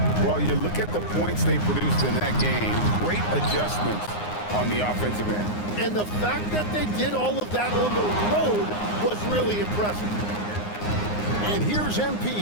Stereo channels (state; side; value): late; right; 9.7 ms